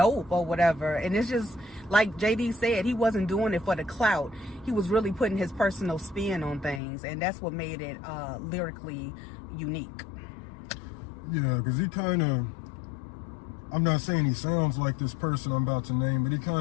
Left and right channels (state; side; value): drops out; right; at 6.8 s